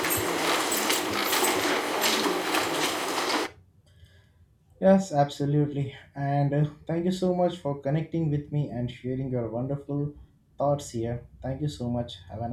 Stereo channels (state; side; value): identical; both; correlation 1.00